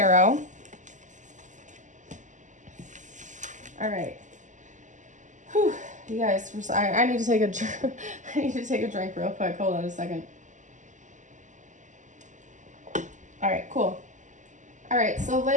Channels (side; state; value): left; late; 0.36 ms